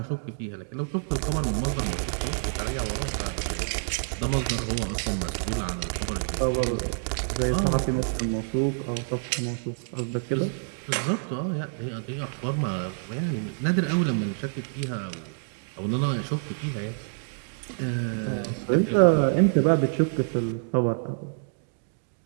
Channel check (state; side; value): silent; left; digital silence